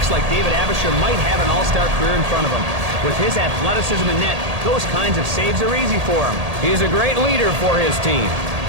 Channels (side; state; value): left; late; 1.8 ms